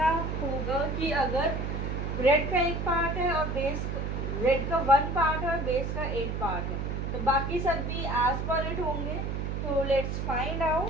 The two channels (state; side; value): noise; right; hum, 2 dB below the sound